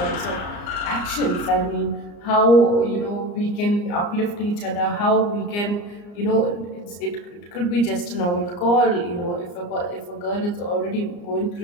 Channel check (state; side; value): late; right; 34 ms